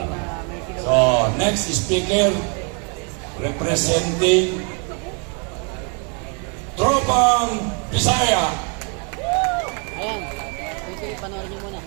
lang. So, next speaker, representing Tropang Bisaya. Ayan, ito panoorin niyo muna.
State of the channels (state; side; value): quieter; left; 34.8 dB